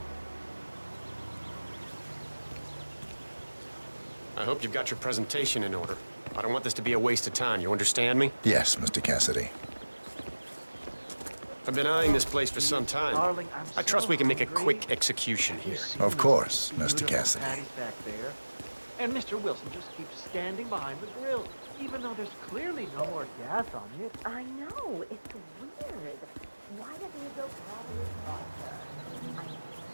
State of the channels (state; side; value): inverted; both; correlation -1.00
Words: I hope you've got your presentation in order. I don't want this to be a waste of time, you understand me? Yes, Mr. Cassidy. I've been eyeing this place for some time. Darling, I trust we can make a quick execution here. Of course, Mr. Cassidy. Patties back there. And Mr. Wilson just keeps standing behind the grill, even though there's clearly no more gas on it. I know, it's weird. Why doesn't he go grab his vodka?